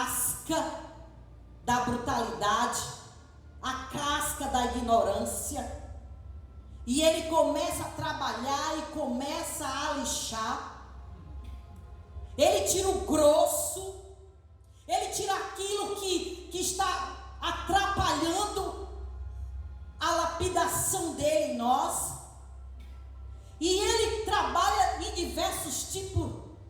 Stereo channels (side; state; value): both; identical; correlation 1.00